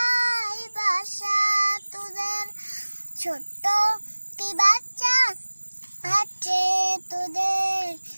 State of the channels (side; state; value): both; inverted; correlation -1.00